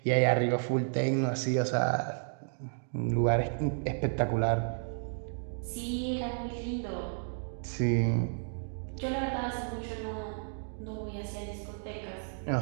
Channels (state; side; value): silent; left; digital silence